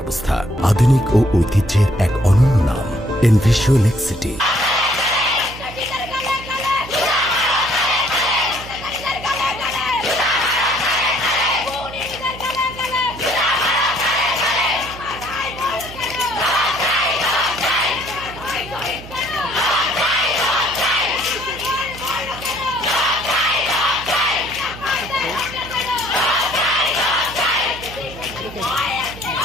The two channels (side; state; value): right; noise; hum, 15 dB below the sound